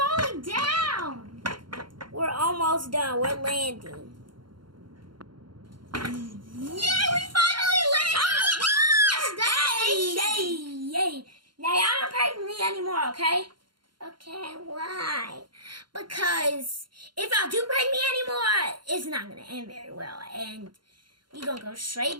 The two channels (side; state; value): left; late; 0.72 ms